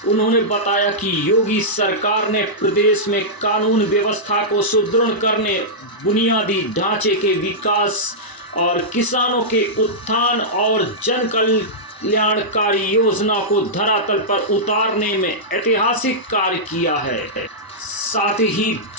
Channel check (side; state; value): right; late; 1.0 ms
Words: उन्होंने बताया कि योगी सरकार ने प्रदेश में कानून व्यवस्था को सुदृढ़ करने, बुनियादी ढांचे के विकास और किसानों के उत्थान और जन कल्याणकारी योजना को धरातल पर उतारने में ऐतिहासिक कार्य किया है। साथ ही